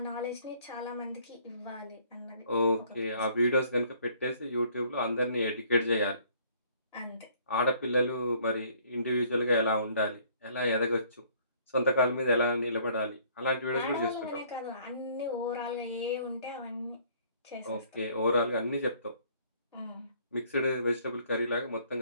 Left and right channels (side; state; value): both; inverted; correlation -0.60